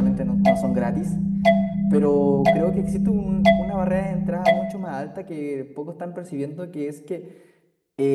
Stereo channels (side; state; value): both; identical; correlation 1.00